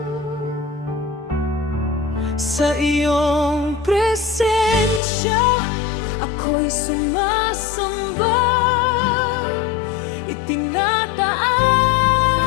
Sa iyong presensya, ako'y sumasamba,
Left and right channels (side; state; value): right; drops out; at 5.0 s